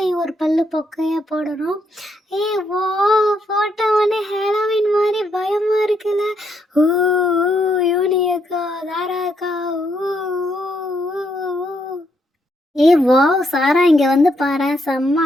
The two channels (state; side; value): normal; both; correlation 0.76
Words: ஒரு பல்லு பொக்கையாக போடணும். வா, போட்ட உடனே ஹாலோவீன் மாதிரி பயமாக இருக்குல்ல. ஊ யூனி அக்கா, தாரா அக்கா, ஊ. வாவ் சாரா, இங்கே வந்து பாரு, செம்ம